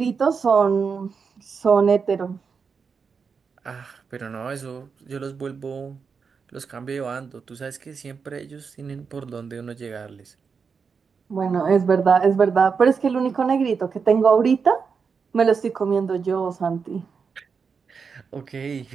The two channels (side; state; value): left; quieter; 5.7 dB